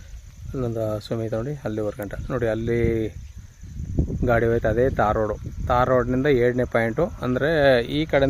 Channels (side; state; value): both; identical; correlation 1.00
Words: ಅಲ್ಲೊಂದು ಸುಮಿತ ನೋಡಿ, ಅಲ್ಲಿ ವರ್ಗಂಟ ನೋಡಿ, ಅಲ್ಲಿ ಗಾಡಿ ಹೋಯ್ತು. ಅದೇ ತಾರ್ ರೋಡು. ತಾರ್ ರೋಡ್ನಿಂದ 7ನೇ ಪಾಯಿಂಟು, ಅಂದರೆ ಈ